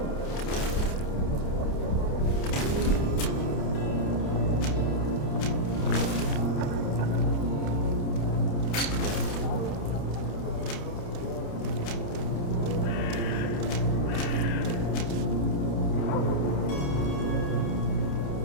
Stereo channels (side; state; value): right; late; 29 ms